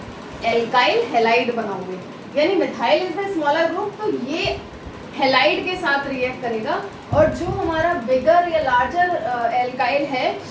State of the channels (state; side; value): identical; both; correlation 1.00